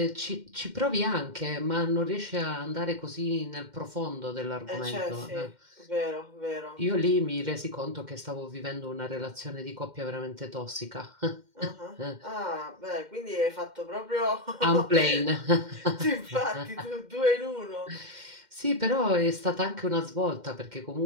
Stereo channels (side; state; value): left; late; 2.1 ms